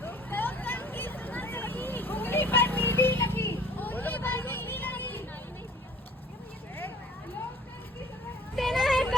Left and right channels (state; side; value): normal; both; correlation 0.49